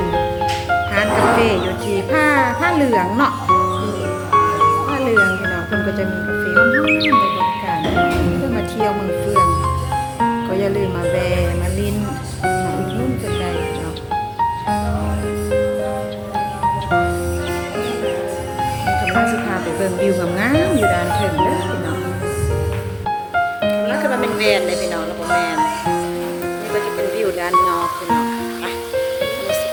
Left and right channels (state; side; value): identical; both; correlation 1.00